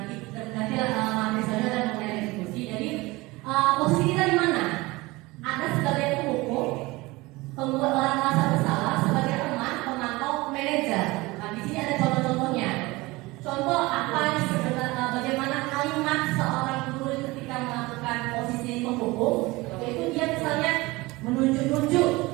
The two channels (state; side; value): quieter; left; 21.8 dB